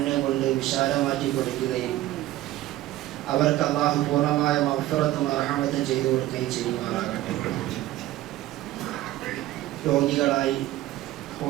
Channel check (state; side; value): quieter; left; 15.3 dB